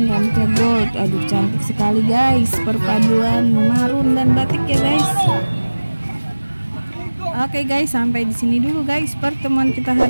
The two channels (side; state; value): both; inverted; correlation -1.00